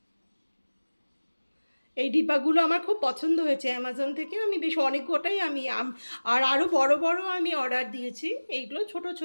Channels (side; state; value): both; inverted; correlation -1.00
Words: এই ডিব্বাগুলো আমার খুব পছন্দ হয়েছে অ্যামাজন থেকে। আমি বেশ অনেক কটাই আমি আর আরও বড় বড় আমি অর্ডার দিয়েছি, এইগুলো ছোট